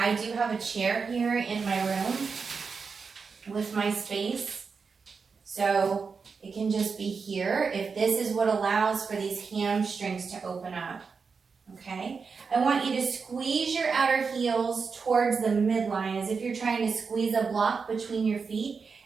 do have a chair here in my room with my space. So it can just be here if this is what allows for these hamstrings to open up. Okay? I want you to squeeze your outer heels towards the midline as if you're trying to squeeze a block between your feet.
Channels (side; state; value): left; quieter; 5.2 dB